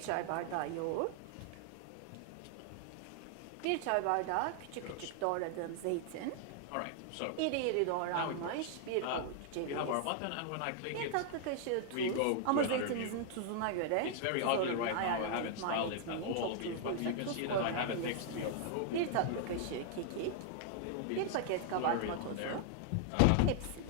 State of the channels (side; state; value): both; different; correlation 0.00